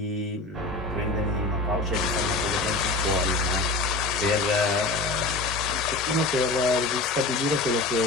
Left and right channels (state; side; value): quieter; right; 3.2 dB